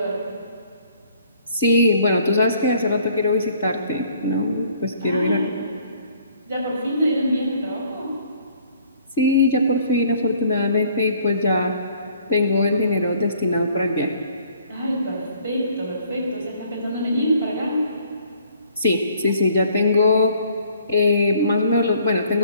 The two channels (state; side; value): inverted; both; correlation -0.59